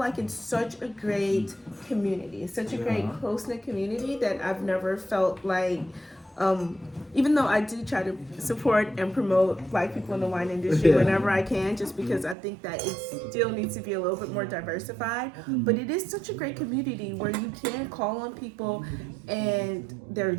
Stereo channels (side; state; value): left; drops out; at 12.4 s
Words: it's such a great community. It's such a great close-knit community that I've never felt like. Even though I do try to support and promote Black people in the wine industry whenever I can, just because I think that it still needs to be a little bit more diversified. But it is such a great community where you can call on people and they're